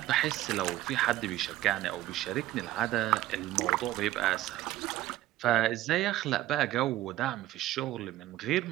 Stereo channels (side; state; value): left; quieter; 14.9 dB